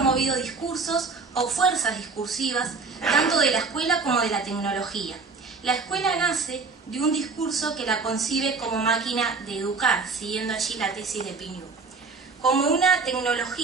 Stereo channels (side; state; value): left; quieter; 4.4 dB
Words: discursos o fuerzas discursivas, tanto de la escuela como de la tecnología. La escuela nace de un discurso que la concibe como máquina de educar, siguiendo allí la tesis de Pignou, como una